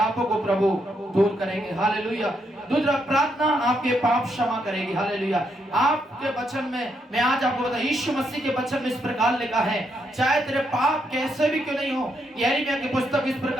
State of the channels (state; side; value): normal; both; correlation 0.78